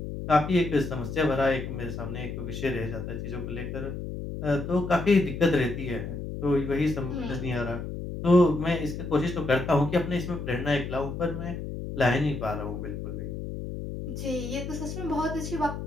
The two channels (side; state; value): left; noise; hum, 6 dB below the sound